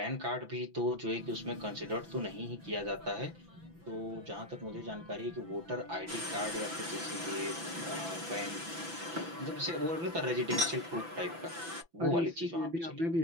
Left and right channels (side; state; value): left; late; 6.0 ms